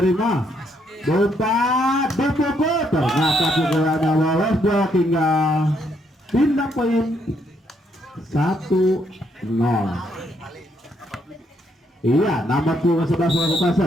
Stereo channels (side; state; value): both; normal; correlation 0.73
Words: umpan dipukul, ternyata pukulannya lolos blok hingga pindah poin 1-0. Iya, nomor 11 melakukan